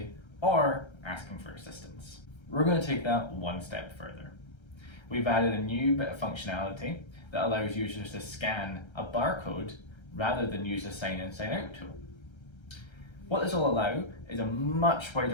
or asking for assistance. We're going to take that one step further. We've added a new bit of functionality that allows users to scan a barcode rather than use a sign in, sign out tool. What this will allow is a much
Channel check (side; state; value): right; late; 1.3 ms